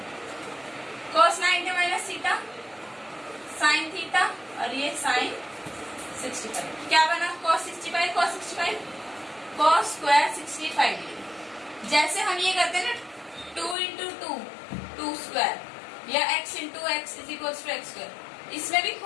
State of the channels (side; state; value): right; drops out; at 13.8 s